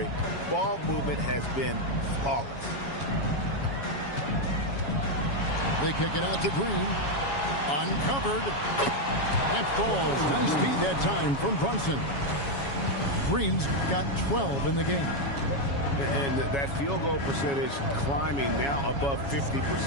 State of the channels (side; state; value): right; late; 7.2 ms